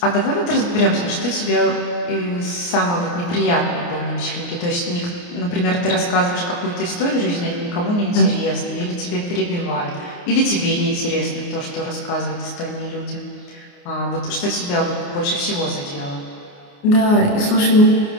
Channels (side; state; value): right; late; 29 ms